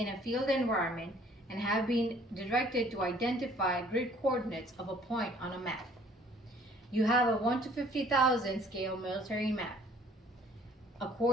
a field environment and have been directed to identify grid coordinates of a point on a map. You have a 1 to 50,000 scale military map, a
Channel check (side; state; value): both; normal; correlation 0.57